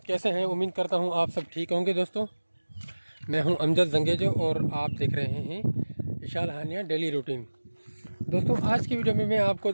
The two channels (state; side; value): inverted; both; correlation -1.00